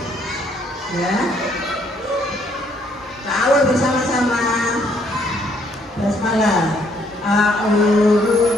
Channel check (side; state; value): both; normal; correlation 0.68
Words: Ya, ta'awun bersama-sama. Basmalah. A'udzu